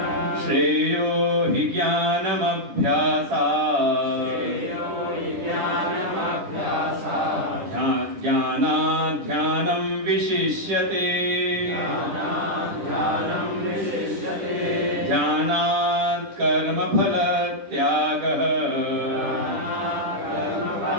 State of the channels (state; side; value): late; left; 10 ms